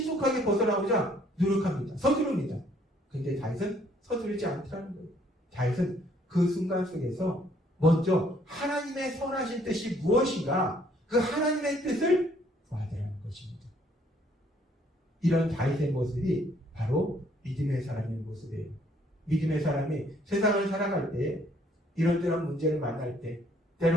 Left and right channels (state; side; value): normal; both; correlation 0.64